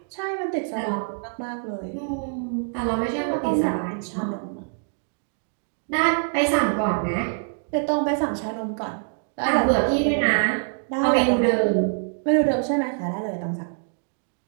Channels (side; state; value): left; silent; digital silence